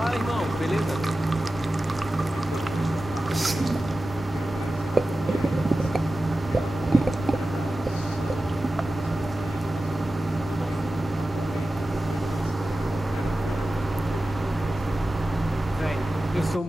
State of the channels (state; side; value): normal; both; correlation 0.94